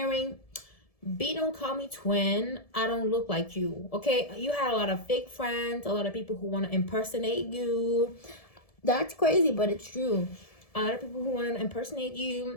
B, don't call me twin. I don't look like you. Okay, you had a lot of fake friends, a lot of people who want to impersonate you. That's crazy, but it's true. A lot of people who want to impersonate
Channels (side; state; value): right; late; 1.7 ms